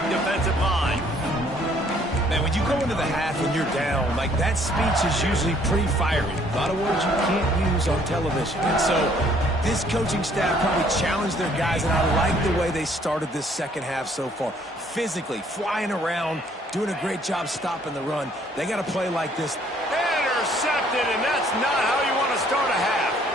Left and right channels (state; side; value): normal; both; correlation 0.62